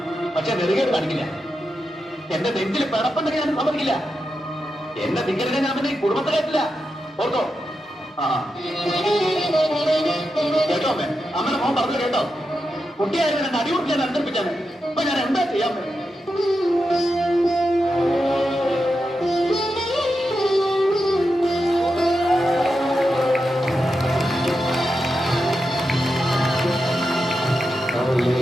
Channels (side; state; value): both; normal; correlation 0.88